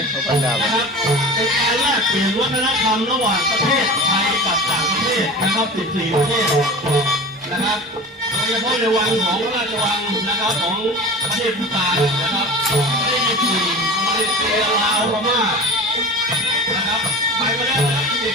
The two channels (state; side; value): normal; both; correlation 0.35